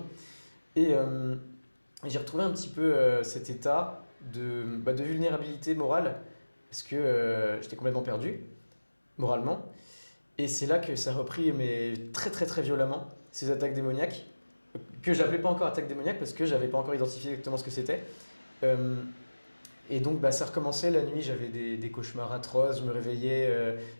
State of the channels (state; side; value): inverted; both; correlation -1.00